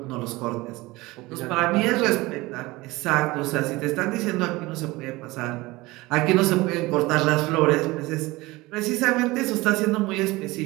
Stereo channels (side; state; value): left; quieter; 20.9 dB